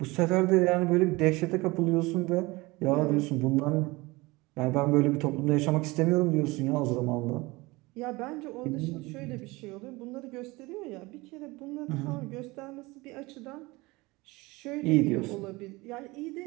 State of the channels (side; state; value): left; quieter; 22.6 dB